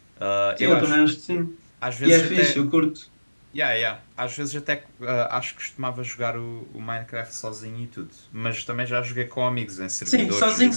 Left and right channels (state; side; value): inverted; both; correlation -1.00